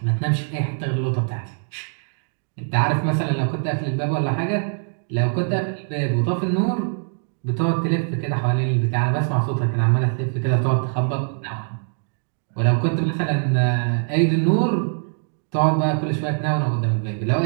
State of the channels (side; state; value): left; silent; 60 dB below the other